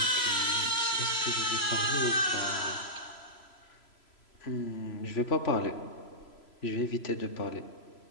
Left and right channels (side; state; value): right; late; 3.0 ms